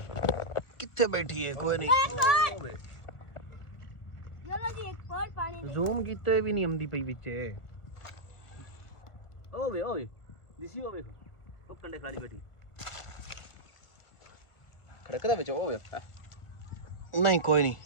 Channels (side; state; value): right; late; 1.2 ms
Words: ਕਿੱਥੇ ਬੈਠੀ ਹੈ ਕੋਈ ਨਹੀਂ चलो जी एक और पानी दे ਜ਼ੂਮ ਕੀਤੇ ਵੀ ਨਹੀਂ ਆਉਂਦੀ ਪਈ ਵਿੱਚ ਓਏ ਦਿਸੀ ਹੋਵੇ ਉਹ ਕੰਡੇ ਖਾਲੀ ਬੈਠੀ ਖੜਕਦਾ ਵਿੱਚ ਹੋਵੇ ਨਹੀਂ ਕੋਈ ਨਹੀਂ